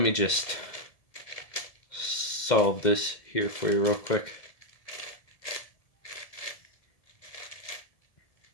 me just solve this here for you real quick.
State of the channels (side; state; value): right; late; 1.7 ms